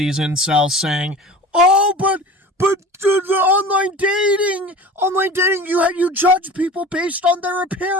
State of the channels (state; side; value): normal; both; correlation 0.38